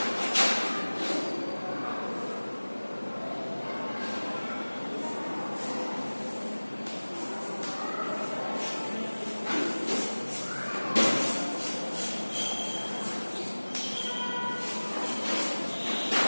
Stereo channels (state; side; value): inverted; both; correlation -1.00